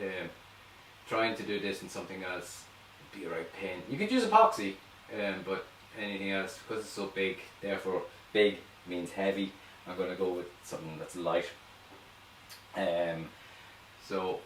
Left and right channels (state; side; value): identical; both; correlation 1.00